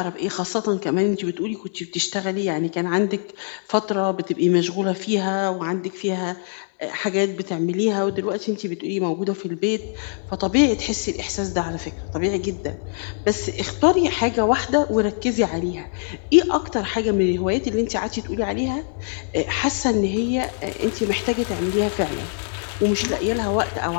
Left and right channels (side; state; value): right; silent; digital silence